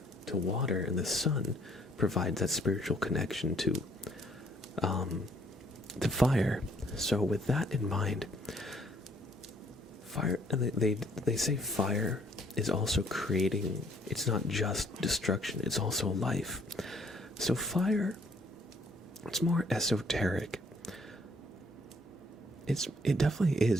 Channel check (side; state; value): both; normal; correlation 0.64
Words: to water, and the sun provides that spiritual connection to fire. So with that in mind, fire, and they say fire is also creating, it's not just destruction, it's also life. So fire, it's more esoteric. It definitely